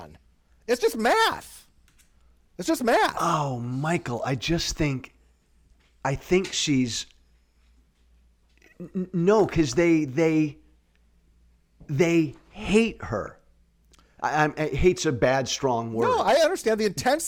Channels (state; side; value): identical; both; correlation 1.00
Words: It's just math. It's just math. Oh, Michael, I think she's... No, because they hate her. Hate's a bad, strong word. No, I understand the